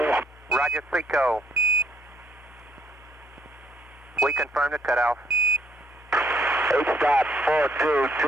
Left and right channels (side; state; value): both; normal; correlation 0.69